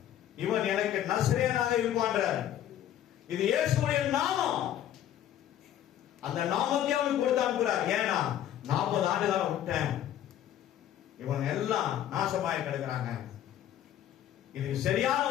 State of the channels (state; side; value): quieter; right; 11.2 dB